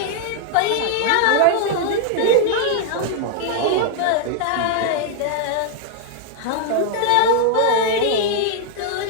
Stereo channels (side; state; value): both; different; correlation 0.00